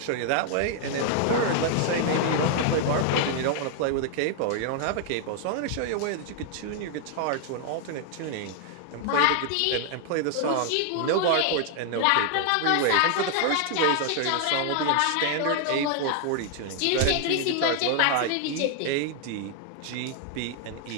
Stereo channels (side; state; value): both; different; correlation 0.00